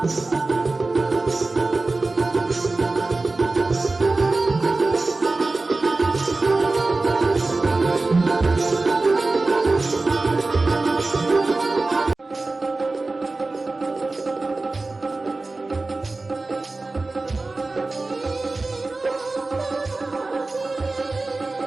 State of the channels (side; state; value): left; quieter; 3.4 dB